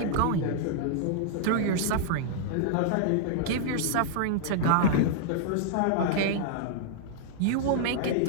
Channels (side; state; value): both; different; correlation -0.01